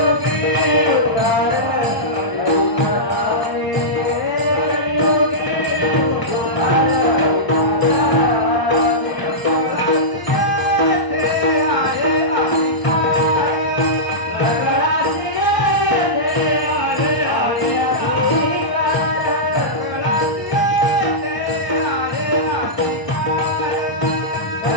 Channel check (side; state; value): right; late; 1.0 ms